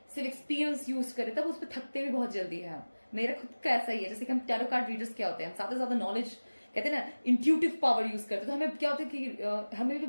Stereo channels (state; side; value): inverted; both; correlation -1.00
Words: सिर्फ एक्सपीरियंस यूज करें, तब उस पर थकते भी बहुत जल्दी है हम. मेरा खुद का ऐसा ही है. जैसे कि हम टैरो कार्ड रीडर्स क्या होते हैं, हम ज्यादा से ज्यादा नॉलेज कहते हैं ना इंट्यूटिव पावर यूज करते हैं, तो हमें क्या होता है कि हमें भी